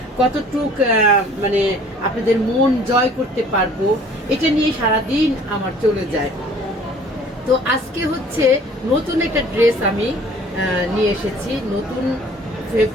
কতটুক মানে আপনাদের মন জয় করতে পারবো, এটা নিয়ে সারাদিন আমার চলে যায়। তো আজকে হচ্ছে নতুন একটা ড্রেস আমি নিয়ে এসেছি, নতুন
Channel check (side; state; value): both; normal; correlation 0.52